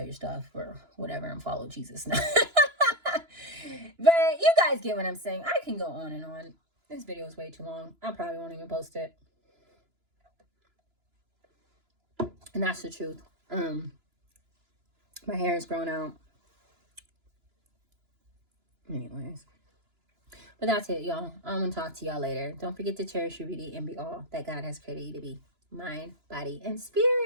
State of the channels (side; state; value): left; late; 2.9 ms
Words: your stuff or whatever and follow Jesus. But you guys get what I'm saying. I can go on and on. This video is way too long. I probably won't even post it. And that's the truth. My hair is grown out. Anyways. But that's it, y'all. I'm going to talk to y'all later. Don't forget to cherish your beauty and be all that God has created you to be. Mind, body, and